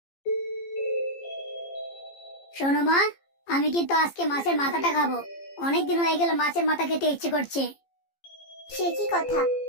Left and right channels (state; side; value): late; right; 15 ms